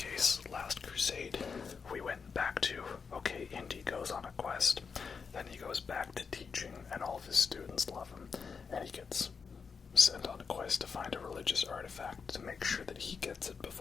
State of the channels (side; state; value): right; quieter; 5.6 dB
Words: Last Crusade, we went back to, okay, Indy goes on a quest, then he goes back to teaching, and all of his students love him, and he gets sent on a quest to find a religious artifact to make sure that he gets it